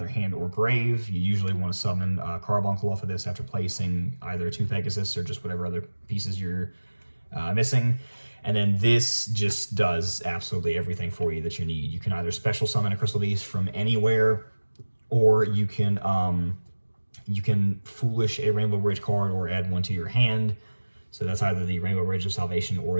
hand or grave. You usually want to summon Carbuncle off of this after placing either 2 Pegasus or just whatever other pieces you're missing. And then this just does absolutely everything for you that you need. You can either special summon a Crystal Beast from anywhere, or you can Foolish a Rainbow Bridge card or add 1 to your hand. So that's either the Rainbow Bridge of Salvation or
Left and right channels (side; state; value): both; inverted; correlation -1.00